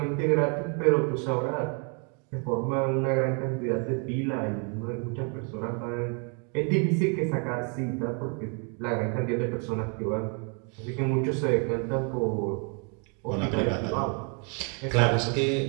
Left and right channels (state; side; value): quieter; left; 37.4 dB